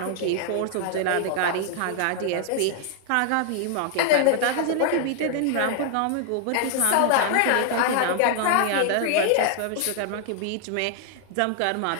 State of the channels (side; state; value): both; different; correlation 0.00